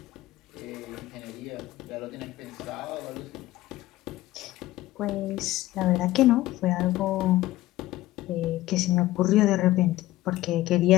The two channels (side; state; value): right; quieter; 16.4 dB